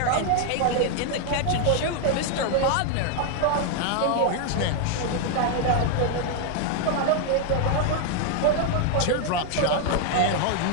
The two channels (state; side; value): different; both; correlation 0.00